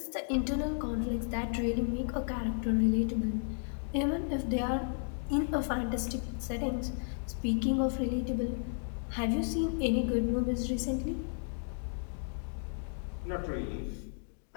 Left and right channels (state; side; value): silent; right; digital silence